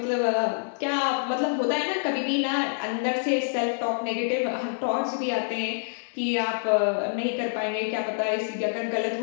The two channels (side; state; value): right; silent; 60 dB below the other